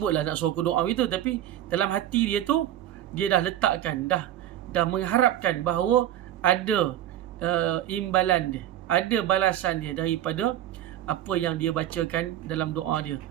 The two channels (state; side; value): quieter; left; 12.2 dB